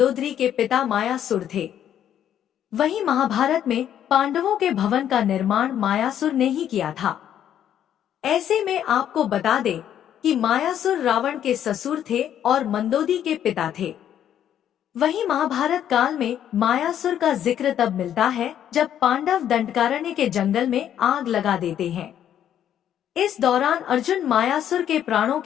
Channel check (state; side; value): quieter; right; 10.2 dB